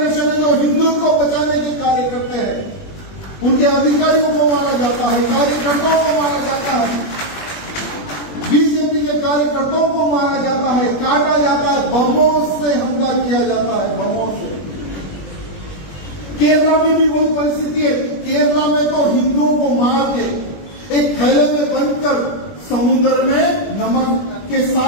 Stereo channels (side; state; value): right; late; 20 ms